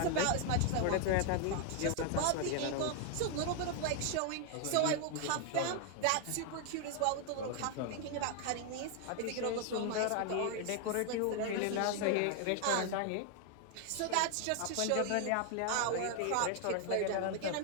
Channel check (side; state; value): both; different; correlation 0.00